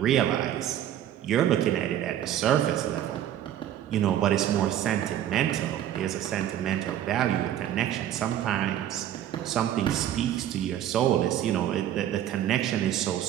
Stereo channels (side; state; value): left; quieter; 11.4 dB